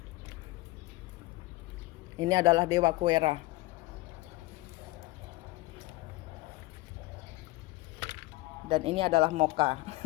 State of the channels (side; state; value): right; quieter; 20.5 dB